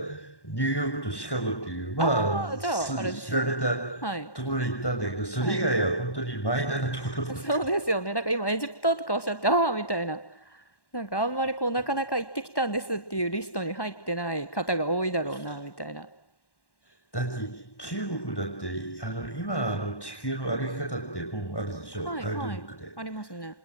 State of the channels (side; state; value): right; late; 1.1 ms